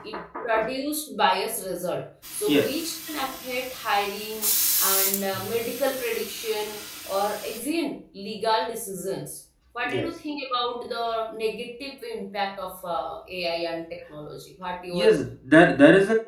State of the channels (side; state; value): both; identical; correlation 1.00